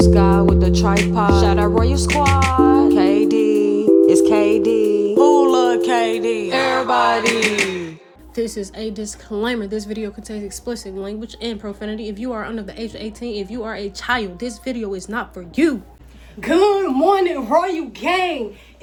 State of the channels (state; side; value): identical; both; correlation 1.00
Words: Sky with the tripod. Shout out Royal Squad. KD, it's KD. Who love KD? Everybody. This is a disclaimer. This video contains explicit language and profanity. If you are under the age of 18, if you are a child, this video is not for you. Good morning, Royal Gang.